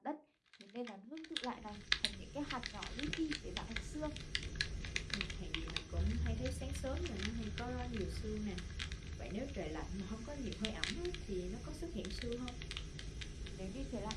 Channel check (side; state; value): both; identical; correlation 1.00